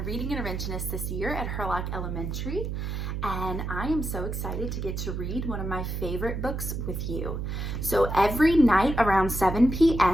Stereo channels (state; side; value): noise; right; hum, 3 dB below the sound